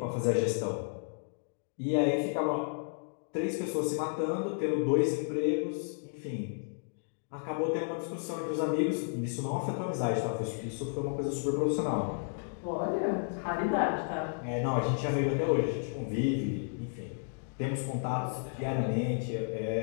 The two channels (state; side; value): silent; right; digital silence